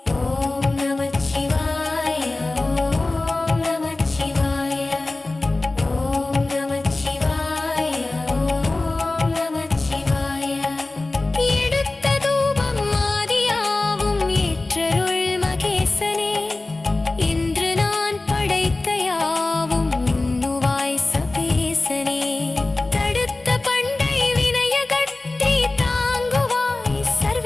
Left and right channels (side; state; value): right; quieter; 3.1 dB